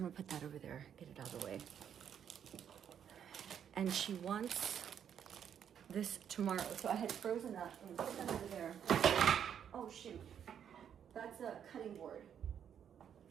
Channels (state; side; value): quieter; left; 8.7 dB